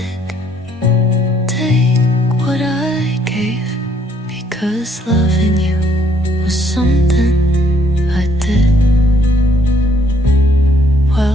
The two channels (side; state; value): both; normal; correlation 0.66